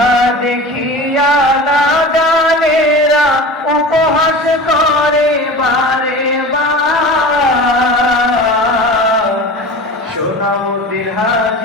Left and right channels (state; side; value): normal; both; correlation 0.34